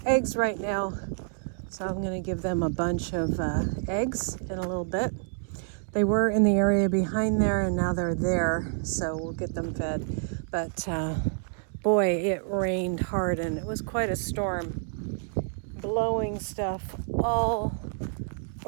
eggs right now. So I'm going to give them a bunch of eggs in a little bit. They were in the area behind there and now they're there. So we'll get them fed. But boy, it rained hard and it was quite a storm. Blowing stuff all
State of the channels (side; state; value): left; silent; 59 dB below the other